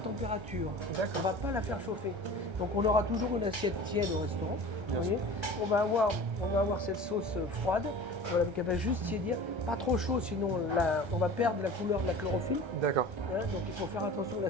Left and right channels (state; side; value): late; left; 1.3 ms